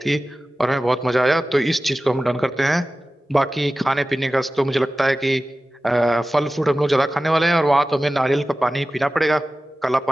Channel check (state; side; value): normal; both; correlation 0.95